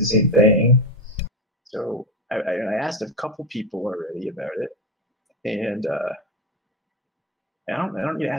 same thing. So I asked a couple people already about it, and I don't need to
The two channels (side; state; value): both; normal; correlation 0.17